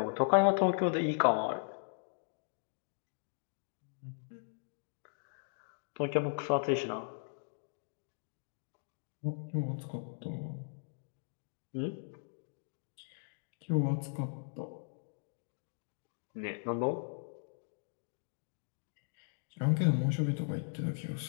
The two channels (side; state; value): right; silent; digital silence